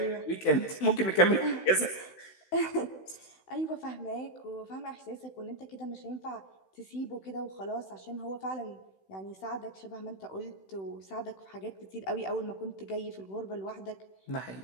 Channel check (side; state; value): right; late; 16 ms